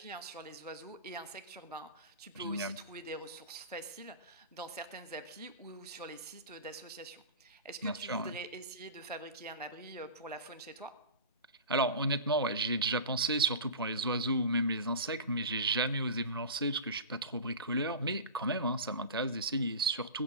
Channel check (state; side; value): inverted; both; correlation -0.31